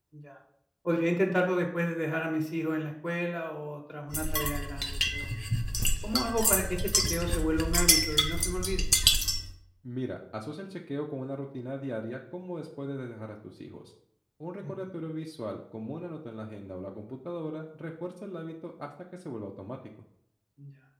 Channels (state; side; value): identical; both; correlation 1.00